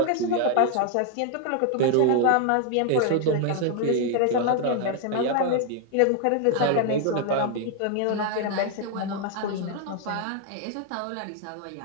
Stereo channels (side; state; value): both; different; correlation 0.00